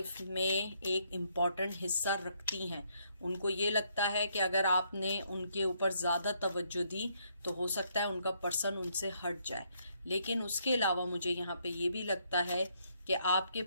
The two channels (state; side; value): inverted; both; correlation -0.72